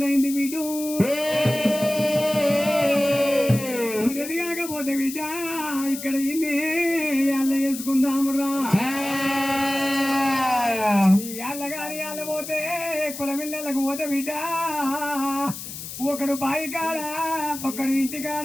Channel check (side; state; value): left; noise; hiss, 10 dB below the sound